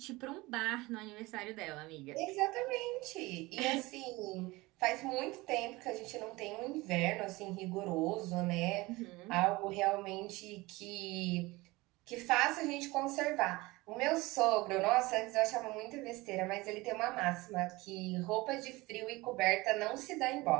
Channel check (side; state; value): left; quieter; 21.6 dB